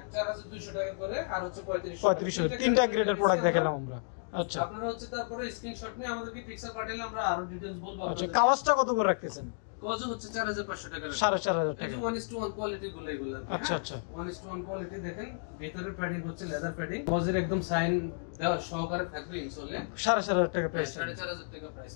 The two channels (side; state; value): right; silent; digital silence